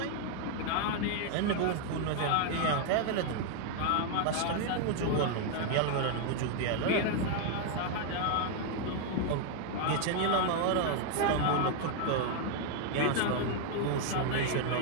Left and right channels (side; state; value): both; different; correlation 0.00